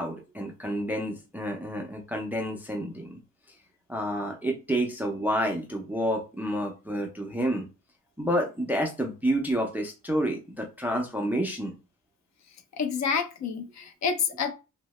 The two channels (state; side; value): normal; both; correlation 0.60